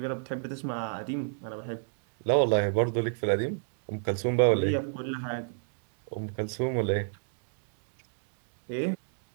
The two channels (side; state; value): left; silent; digital silence